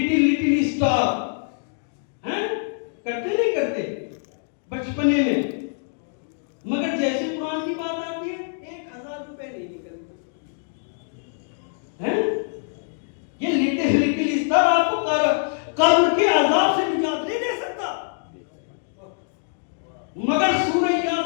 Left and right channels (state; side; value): silent; right; digital silence